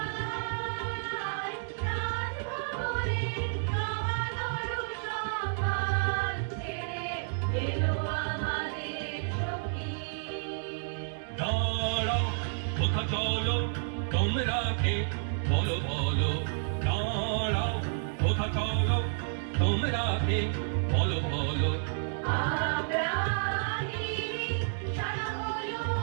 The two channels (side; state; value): left; silent; digital silence